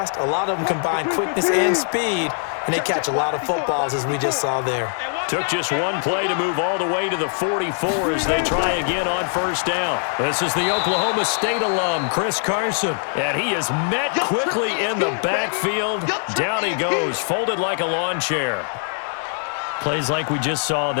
A lot of them combine quickness and speed, and they catch a lot of footballs, as we just saw there. Took just one play to move all the way to the 44 as they try again on first down. This is the Oklahoma State alum, Chris Carson. And he is met quickly in the backfield. Down he goes, folded like a lawn chair. Plays like we just saw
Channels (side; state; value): right; silent; 60 dB below the other